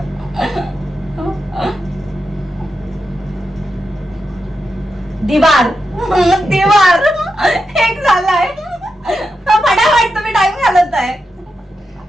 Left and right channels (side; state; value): both; normal; correlation 0.87